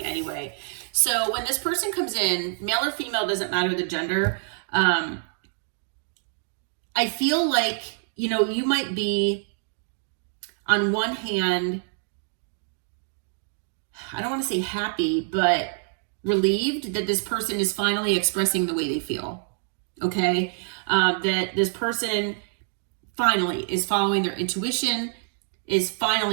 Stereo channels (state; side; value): silent; left; 61 dB below the other